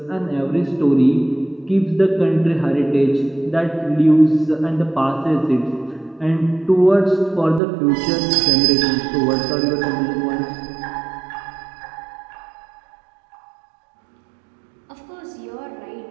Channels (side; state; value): left; drops out; at 7.6 s